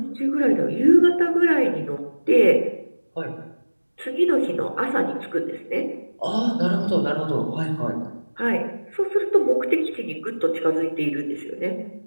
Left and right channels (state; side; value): inverted; both; correlation -1.00